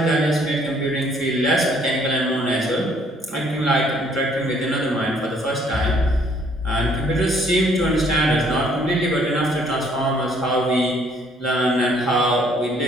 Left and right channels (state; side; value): normal; both; correlation 0.63